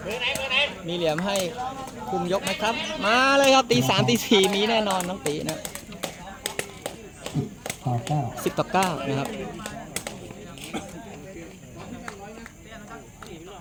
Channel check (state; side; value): identical; both; correlation 1.00